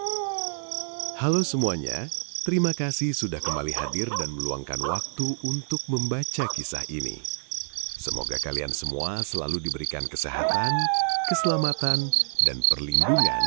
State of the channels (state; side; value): silent; left; digital silence